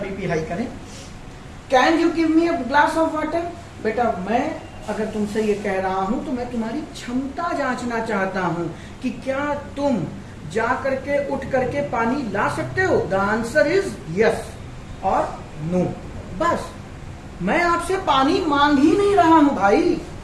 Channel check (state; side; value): identical; both; correlation 1.00